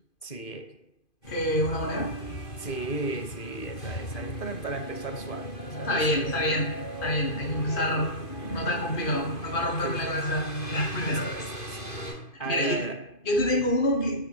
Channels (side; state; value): right; late; 2.5 ms